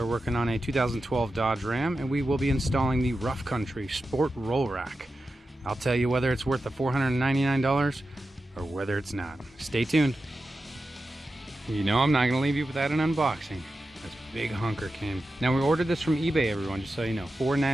working on a 2012 Dodge Ram, and we will be installing the Rough Country Sport Roll Rack. I'll tell you whether it's worth the $499 or whether it's not. Stay tuned. You know I'm not going to leave you without an unboxing. This big hunker came. Now, we ordered this from eBay, everyone, just so you know.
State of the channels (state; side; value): normal; both; correlation 0.91